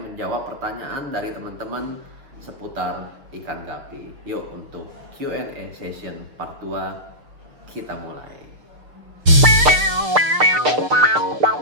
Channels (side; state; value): left; late; 6.6 ms